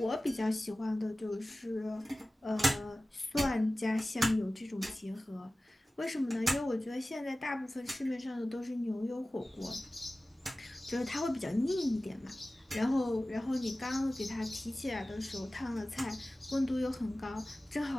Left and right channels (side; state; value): both; normal; correlation 0.97